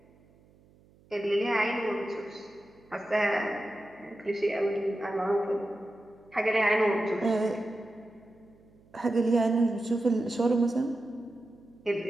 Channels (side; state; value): right; noise; hum, 29 dB below the sound